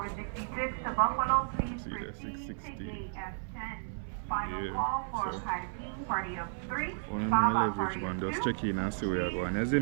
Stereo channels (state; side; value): silent; left; 56 dB below the other